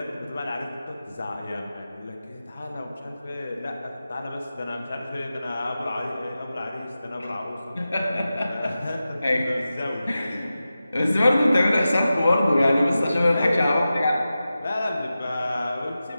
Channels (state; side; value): inverted; both; correlation -0.93